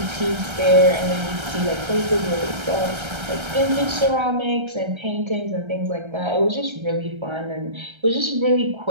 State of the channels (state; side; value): late; left; 1.3 ms